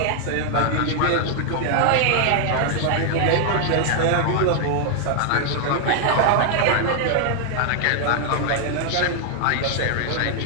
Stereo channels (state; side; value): different; both; correlation 0.00